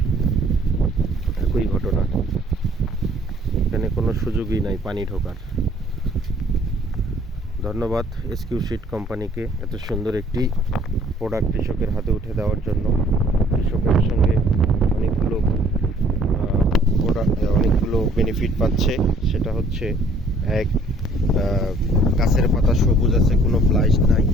একই ঘটনা। এখানে কোনো সুযোগই নাই পানি ঢোকার। ধন্যবাদ SQ-Seed কোম্পানিকে এত সুন্দর একটি প্রোডাক্ট কৃষকের হাতে উঠে দেওয়ার জন্য। কৃষকের সঙ্গে অনেকগুলো বেনিফিট পাচ্ছে। সেটা হচ্ছে এক, গাছের পাতা সবুজ আছে, কোনো ব্লাইট নাই,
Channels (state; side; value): normal; both; correlation 0.59